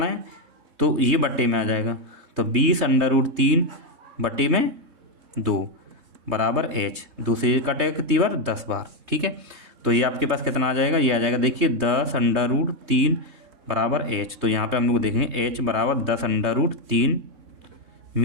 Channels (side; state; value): left; late; 3.7 ms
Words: है, तो ये बट्टे में आ जाएगा, तो 20√3 बट्टे में 2 बराबर h, 2 से कटेगा कितनी बार 10 बार, ठीक है। तो ये आपके पास कितना आ जाएगा, ये आ जाएगा देखिए 10√3 बराबर h, तो यहाँ पे हम लोग देखेंगे h बराबर 10√3